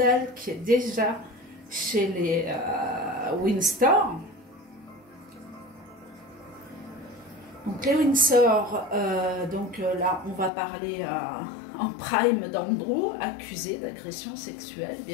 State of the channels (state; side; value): drops out; right; at 10.5 s